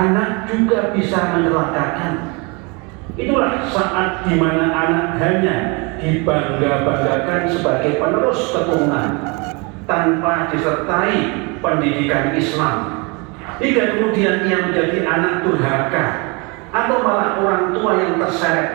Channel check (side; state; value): left; quieter; 29.8 dB